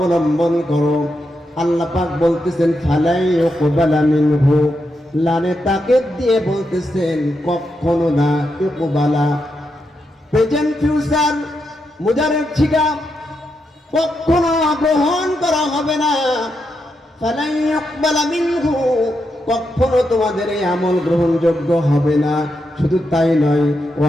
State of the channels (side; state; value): both; normal; correlation 0.84